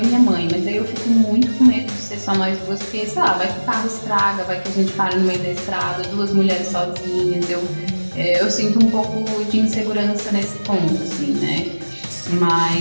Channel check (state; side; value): inverted; both; correlation -1.00